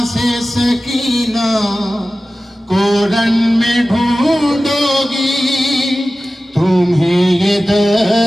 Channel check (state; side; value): normal; both; correlation 0.96